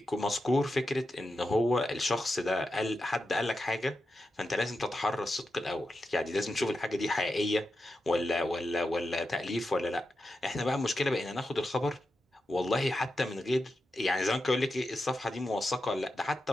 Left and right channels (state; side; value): normal; both; correlation 0.89